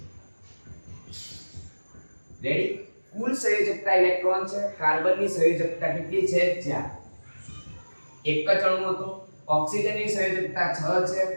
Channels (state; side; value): inverted; both; correlation -1.00